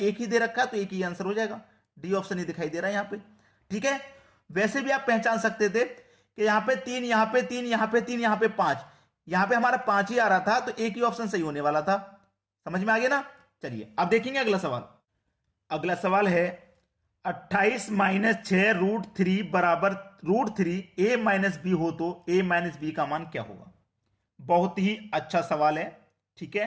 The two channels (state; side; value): identical; both; correlation 1.00